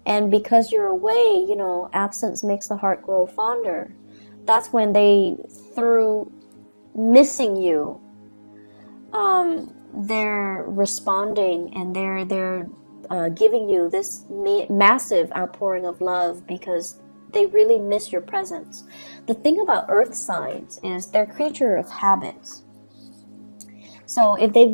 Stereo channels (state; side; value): inverted; both; correlation -1.00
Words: And because you're away, absence makes the heart grow fonder. That's when they, through missing you, they're responding, and they're giving you this massive outpouring of love because they really miss your presence. The thing about earth signs is they're creature of habits. So if they've